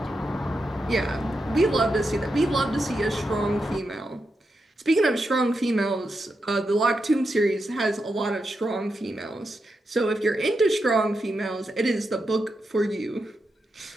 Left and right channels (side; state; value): both; normal; correlation 0.86